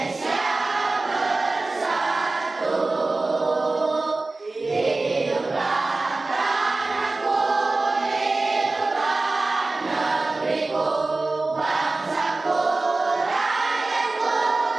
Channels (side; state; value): left; quieter; 3.3 dB